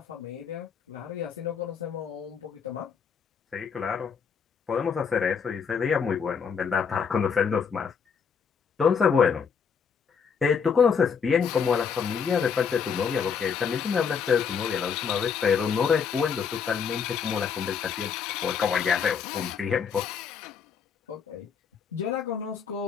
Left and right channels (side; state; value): right; quieter; 6.5 dB